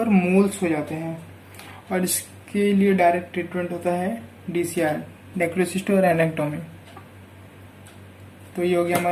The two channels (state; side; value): identical; both; correlation 1.00